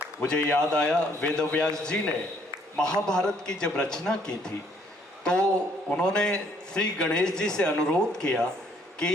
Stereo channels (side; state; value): both; normal; correlation 0.65